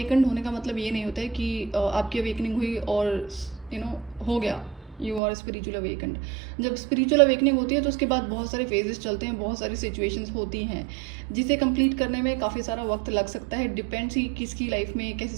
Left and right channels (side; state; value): left; drops out; at 5.2 s